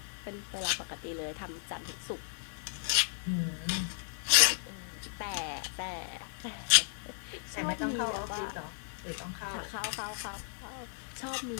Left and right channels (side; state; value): right; silent; digital silence